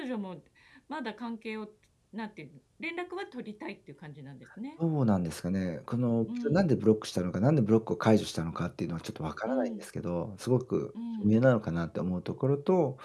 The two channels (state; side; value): identical; both; correlation 1.00